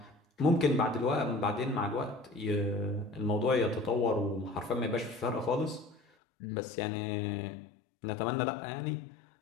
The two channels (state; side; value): drops out; right; at 6.0 s